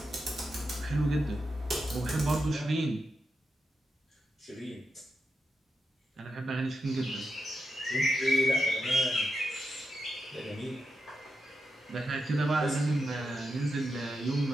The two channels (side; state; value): both; normal; correlation 0.87